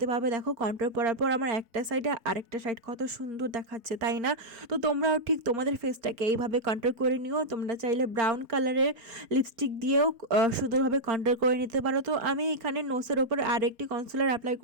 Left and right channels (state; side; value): late; left; 4.3 ms